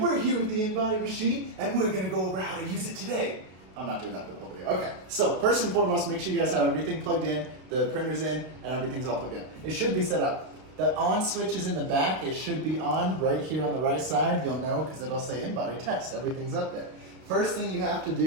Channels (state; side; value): late; left; 32 ms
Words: here with the InBody machine, and we're gonna go over how to use it today. I'm not doing that for the whole video. Okay, so first and foremost, make sure you guys have everything plugged in, the printer's in, and everything's all plugged in. It should be set up. The on switch is in the back. It should be on right here on the right side. You'll know because it'll say InBody test. Everything's up there. First thing you have to